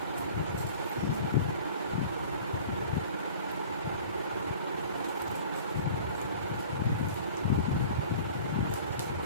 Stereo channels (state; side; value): inverted; both; correlation -0.44